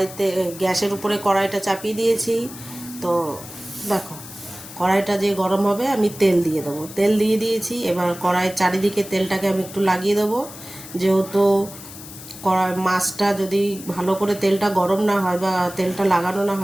গ্যাসের উপরে কড়াইটা চাপিয়ে দিয়েছি। তো দেখো, কড়াইটা যে গরম হবে আমি তেল দিয়ে দেবো। তেল দিয়ে দিয়েছি। এবার কড়াইয়ের চারিদিকে তেলটাকে আমি একটু লাগিয়ে দেবো, যেহেতু কড়াই মাছটা যদি ভালো করে তেলটা গরম না হয় বা তেলটা লাগানো না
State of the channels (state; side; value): noise; left; hiss, 15 dB below the sound